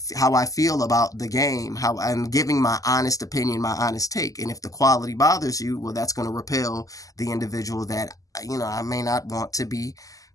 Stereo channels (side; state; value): right; late; 0.17 ms